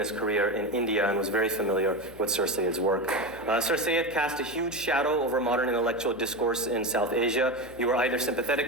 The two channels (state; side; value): noise; left; hum, 20 dB below the sound